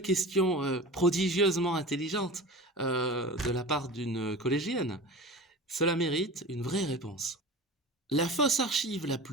question prodigieusement intelligente de la part d'une collégienne. Cela mérite une vraie réponse. La fausse archive la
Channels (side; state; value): both; normal; correlation 0.34